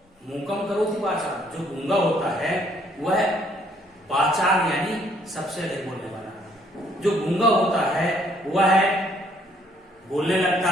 मूकम करोति वाचाल जो गूंगा होता है वह वाचाल यानी सबसे अधिक बोलने वाला। जो गूंगा होता है वह बोलने लगता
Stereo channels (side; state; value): both; normal; correlation 0.65